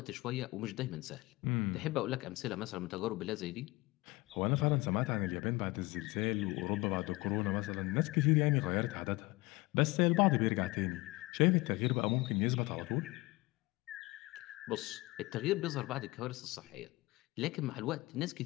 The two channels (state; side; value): quieter; right; 22.0 dB